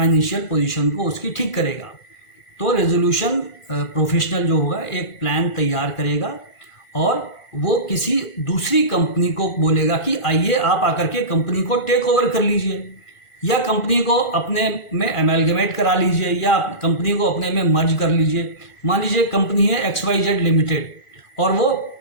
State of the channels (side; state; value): right; late; 1.5 ms